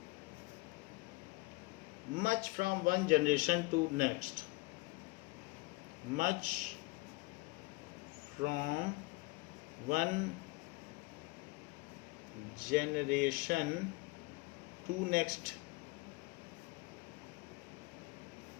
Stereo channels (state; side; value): quieter; right; 24.9 dB